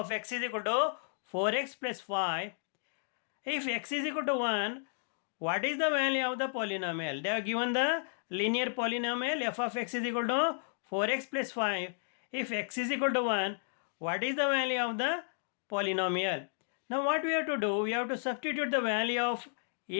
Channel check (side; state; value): right; silent; digital silence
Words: x is equal to 4x plus 5. If x is equal to 1, what is the value of the polynomial? They have given the linear polynomial f of x is equal to 4x plus 5. If x is equal to 1, what is the value of the polynomial? Now what we have to do? We have to substitute the value of